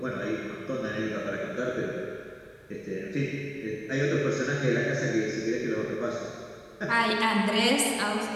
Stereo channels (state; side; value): identical; both; correlation 1.00